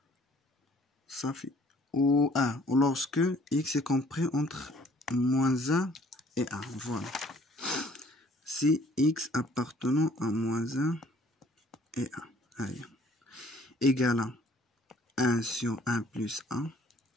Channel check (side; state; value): both; normal; correlation 0.58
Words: صافي ou 1 ou lorsque x est compris entre moins 1 et 1. Voilà. si x appartenant à moins 1 et 1 égale à 1 sur 1 plus 1